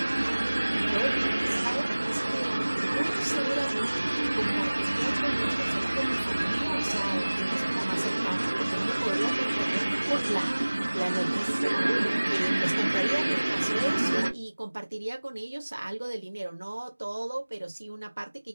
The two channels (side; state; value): both; inverted; correlation -1.00